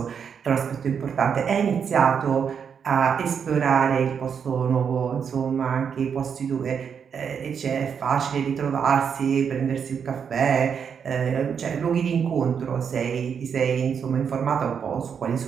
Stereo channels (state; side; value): quieter; left; 7.1 dB